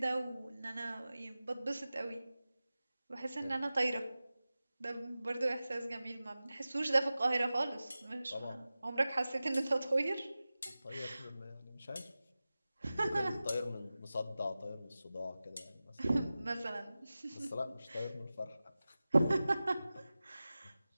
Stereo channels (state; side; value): inverted; both; correlation -0.96